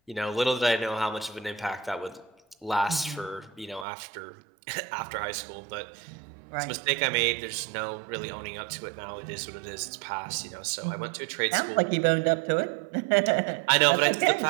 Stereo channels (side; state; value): left; drops out; at 3.9 s